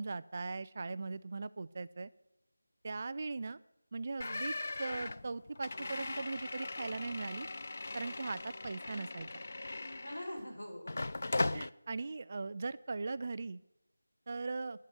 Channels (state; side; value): inverted; both; correlation -0.94